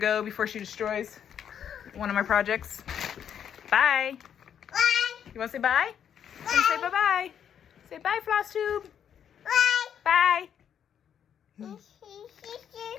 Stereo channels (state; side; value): quieter; right; 8.7 dB